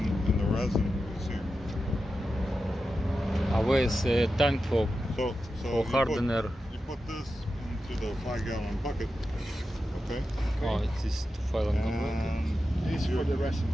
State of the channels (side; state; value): both; normal; correlation 0.91